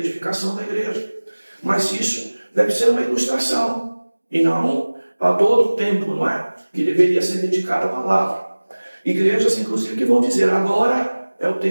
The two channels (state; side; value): inverted; both; correlation -1.00